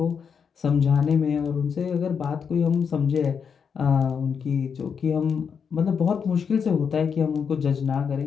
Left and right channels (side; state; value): right; quieter; 6.6 dB